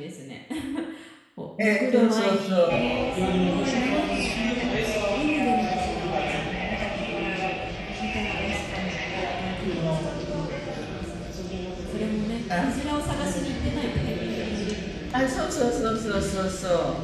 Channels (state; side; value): identical; both; correlation 1.00